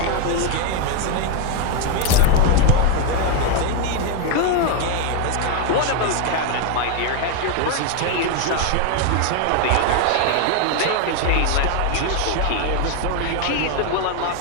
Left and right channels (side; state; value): both; different; correlation 0.01